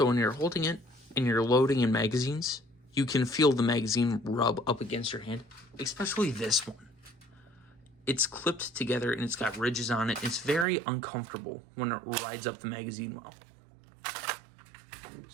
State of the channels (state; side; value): drops out; left; at 10.7 s